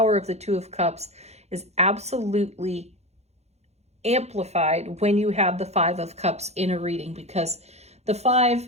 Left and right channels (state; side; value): late; left; 0.31 ms